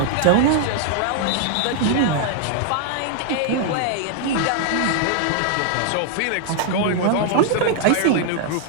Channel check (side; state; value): both; different; correlation 0.00